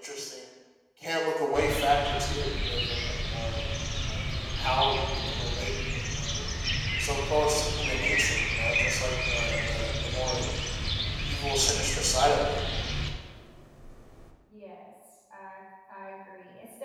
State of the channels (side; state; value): both; identical; correlation 1.00